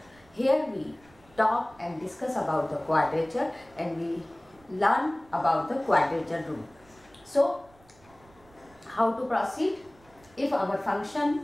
Here we talk and discuss about the quadrature and we learn about the quadrature rule. So how to proceed? If our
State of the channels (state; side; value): noise; right; rumble, 28 dB below the sound